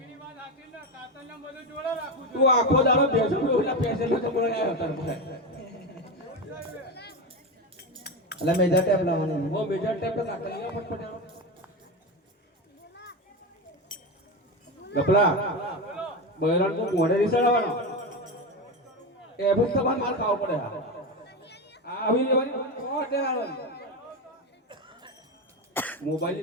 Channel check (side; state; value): both; normal; correlation 0.17